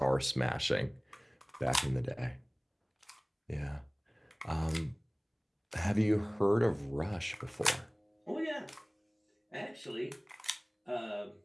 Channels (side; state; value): both; identical; correlation 1.00